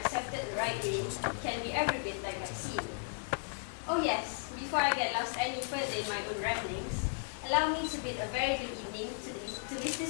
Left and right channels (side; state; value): right; silent; digital silence